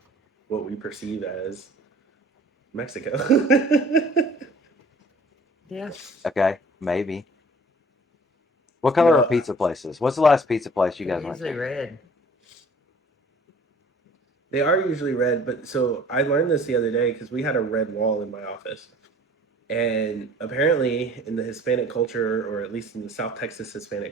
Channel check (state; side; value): normal; both; correlation 0.50